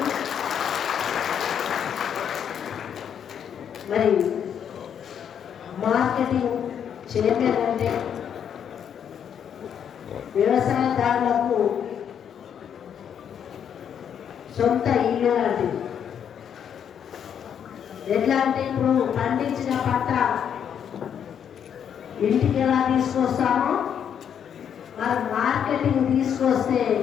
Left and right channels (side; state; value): right; quieter; 8.4 dB